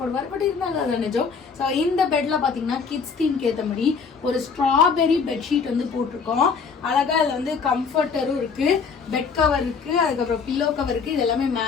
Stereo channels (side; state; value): right; quieter; 5.6 dB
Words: போடுவார். பட் இருந்தாலும் அது நிஜம். ஸோ இந்த பெட்ல பாத்தீங்கன்னா கிட்ஸ் தீம்க்கு ஏற்ற மாதிரி ஒரு ஸ்ட்ராபெரி பெட்ஷீட் வந்து போட்டிருக்கோம். அழகா அதுல வந்து கம்ஃபர்டரும் இருக்கு, பெட் கவர் இருக்கு, அதுக்கப்புறம் பில்லோ கவர் இருக்கு. இது எல்லாமே